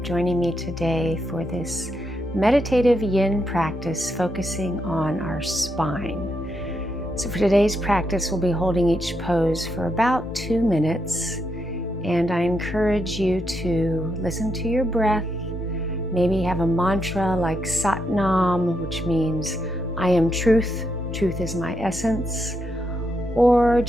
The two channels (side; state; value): both; normal; correlation 0.81